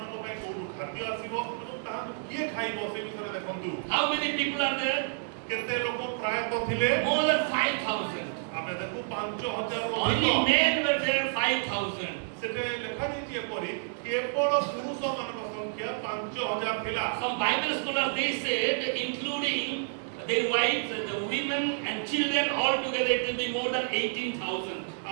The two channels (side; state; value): left; silent; digital silence